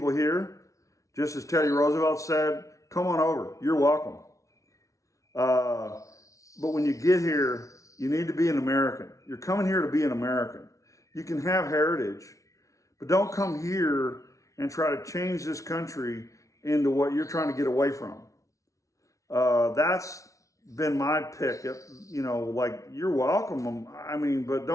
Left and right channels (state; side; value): late; right; 0.16 ms